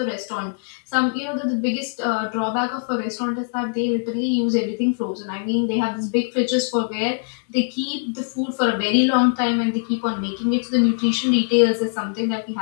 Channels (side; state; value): right; silent; digital silence